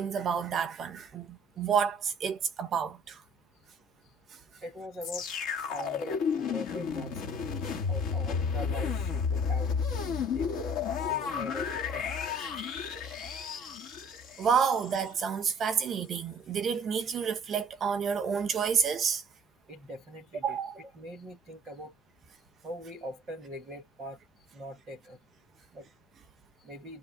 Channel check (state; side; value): normal; both; correlation 0.54